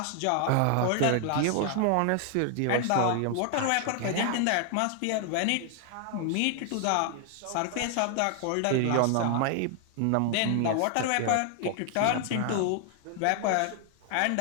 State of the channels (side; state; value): both; different; correlation 0.00